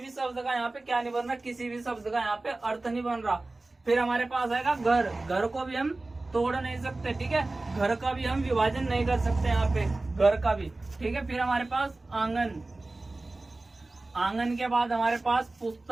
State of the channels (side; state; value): left; quieter; 3.1 dB